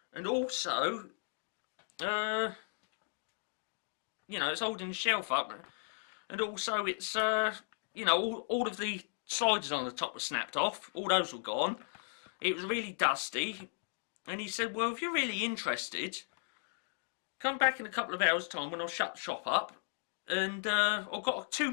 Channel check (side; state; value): right; silent; digital silence